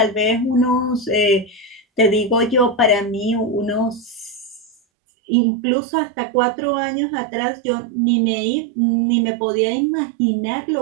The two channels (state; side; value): drops out; left; at 4.8 s